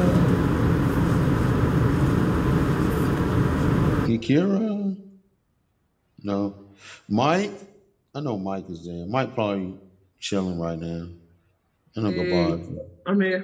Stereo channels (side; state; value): both; identical; correlation 1.00